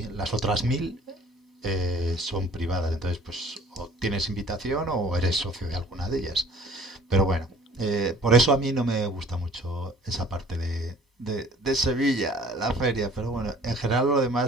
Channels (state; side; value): normal; both; correlation 0.52